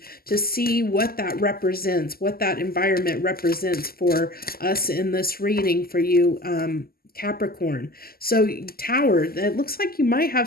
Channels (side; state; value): right; late; 0.43 ms